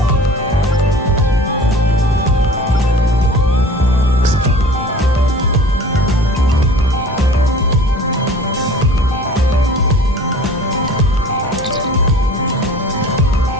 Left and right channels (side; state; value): both; normal; correlation 0.44